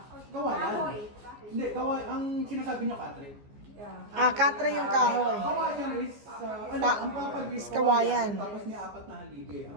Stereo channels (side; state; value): left; late; 14 ms